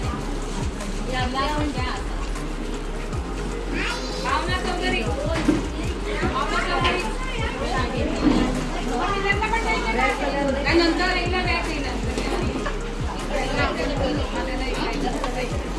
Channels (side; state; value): both; identical; correlation 1.00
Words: भावना चौधरी काय नंतर एकला बॅग येईल